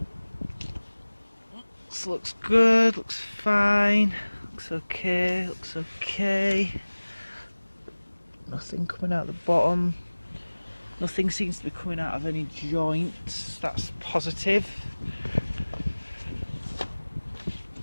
this looks good, looks fine, looks okay. Nothing coming out the bottom. Nothing seems to be coming out of any joints. That's positive.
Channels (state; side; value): inverted; both; correlation -1.00